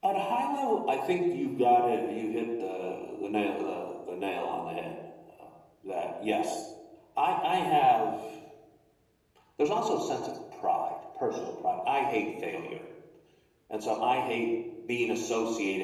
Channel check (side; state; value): both; identical; correlation 1.00